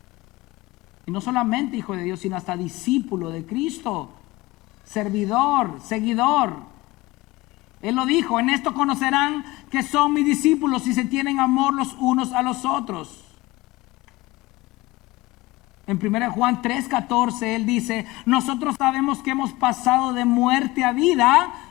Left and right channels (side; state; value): right; quieter; 20.2 dB